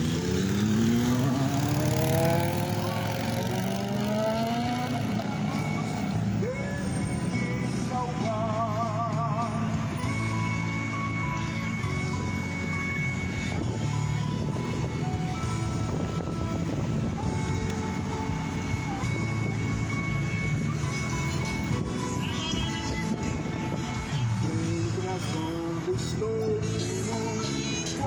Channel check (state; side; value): identical; both; correlation 1.00